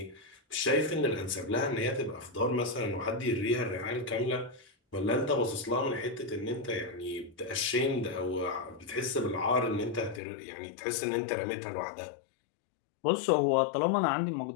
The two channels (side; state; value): right; drops out; at 10.2 s